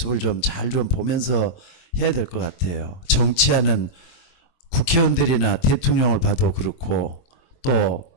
좀 잘 좀 보면서 해야 될 것 같아요. 정치하는 국회의원들이나 대통령을 봐도 그렇고 또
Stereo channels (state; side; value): late; right; 23 ms